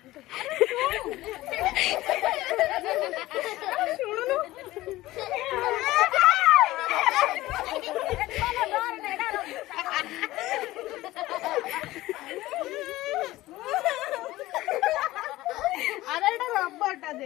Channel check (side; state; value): right; quieter; 17.3 dB